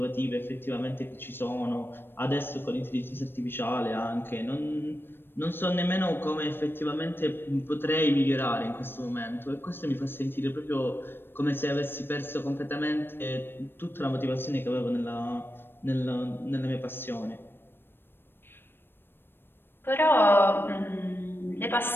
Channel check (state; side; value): late; right; 0.10 ms